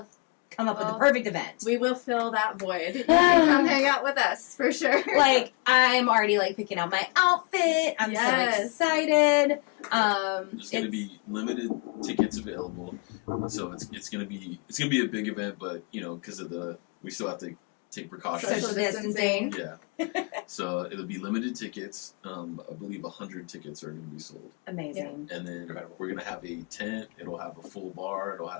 come up with the perfect event. We will fill that void. You can come hang out with us for sure. Like, I'm already like picking out my outfit. I'm Yes. so excited. There's going to be limited tickets available, so it's going to be a big event. But you know, because of we still have to take precautions. Social distancing. Yeah. So it'll be limited tickets. I believe 100 tickets are going to be sold. Amazing. And then Incredible. we're going to have a tent. It'll have a full bar. It'll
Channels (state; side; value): quieter; right; 32.7 dB